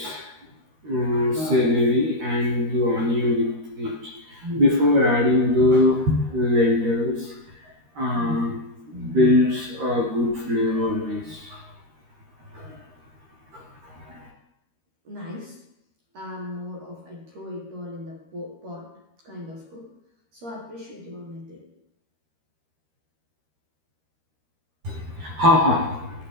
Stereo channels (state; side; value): late; left; 13 ms